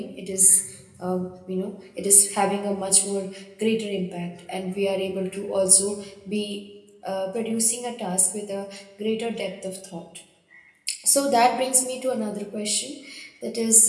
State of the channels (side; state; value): both; identical; correlation 1.00